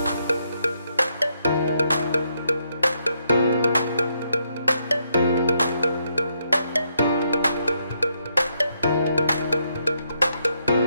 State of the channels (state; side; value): inverted; both; correlation -0.77